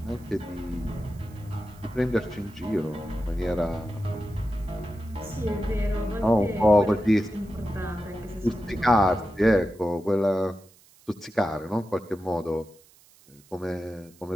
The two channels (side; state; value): right; noise; hiss, 27 dB below the sound